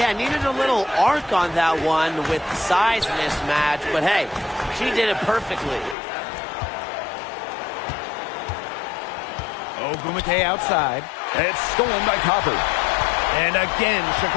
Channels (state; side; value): drops out; right; at 6.0 s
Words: needed a little arc on that one with the size mismatch, but hey, she did it perfectly. Ogumake outside. It's stolen by Copper. And again,